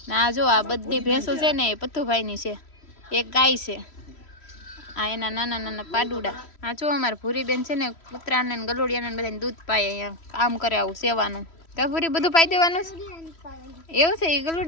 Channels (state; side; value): late; right; 3.1 ms